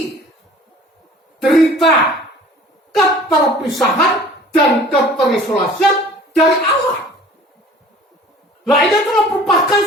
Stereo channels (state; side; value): normal; both; correlation 0.48